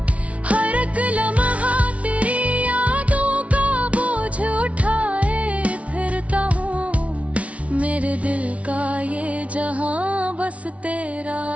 हर एक लम्हा तेरी यादों का बोझ उठाए फिरता हूँ। मेरे दिल का ये जहां बस तेरा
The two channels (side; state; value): left; late; 0.064 ms